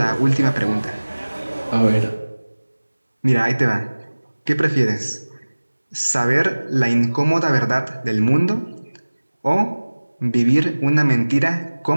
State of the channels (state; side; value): inverted; both; correlation -1.00